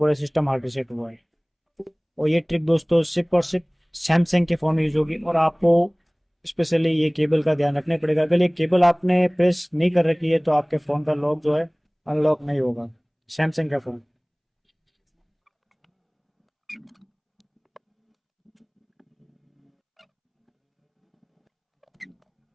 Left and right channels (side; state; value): both; identical; correlation 1.00